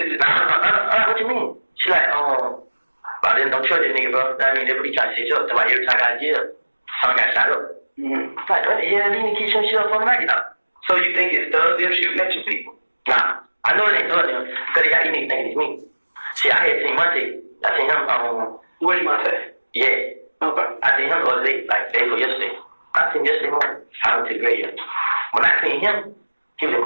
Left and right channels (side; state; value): both; inverted; correlation -1.00